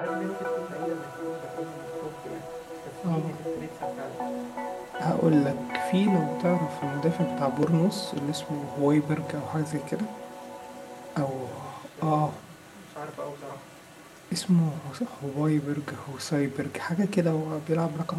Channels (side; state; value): both; identical; correlation 1.00